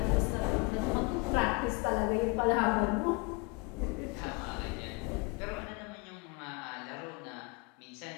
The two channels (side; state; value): right; quieter; 29.2 dB